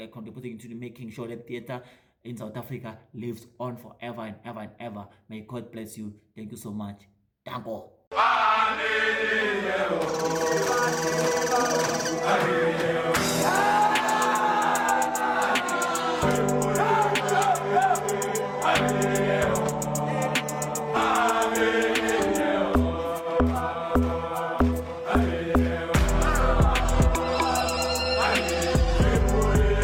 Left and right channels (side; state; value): both; identical; correlation 1.00